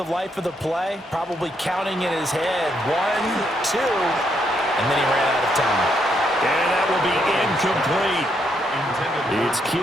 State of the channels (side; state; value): both; normal; correlation 0.76